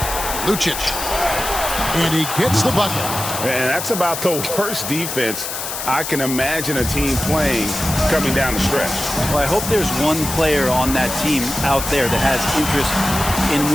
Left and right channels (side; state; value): left; noise; hiss, 5 dB below the sound